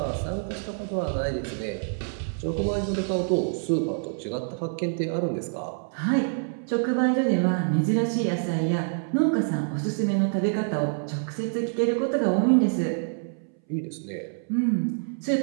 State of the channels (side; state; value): left; silent; 61 dB below the other